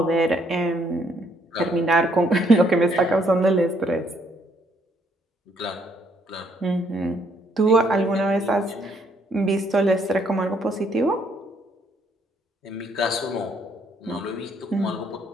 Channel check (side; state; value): both; normal; correlation 0.69